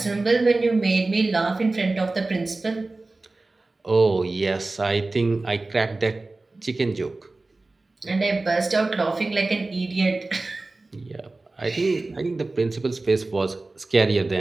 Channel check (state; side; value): quieter; left; 3.2 dB